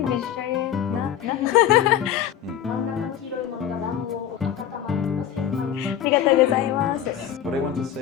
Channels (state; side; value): quieter; right; 10.1 dB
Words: vegetarian? No. what I want to